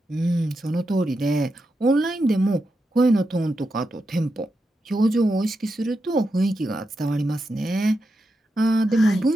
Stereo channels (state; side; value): normal; both; correlation 0.87